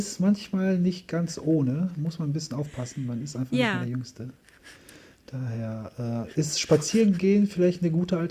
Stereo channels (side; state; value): both; identical; correlation 1.00